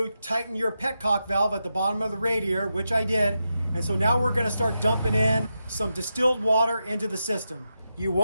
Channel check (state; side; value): inverted; both; correlation -0.87